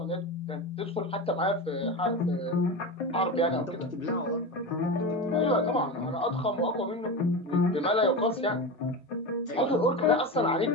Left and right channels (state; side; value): normal; both; correlation 0.23